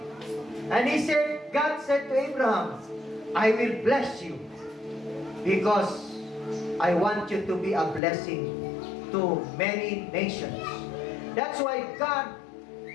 And God said to Abraham, I will bless you because I want you to be a blessing to many nations. That's why God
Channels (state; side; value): drops out; right; at 8.0 s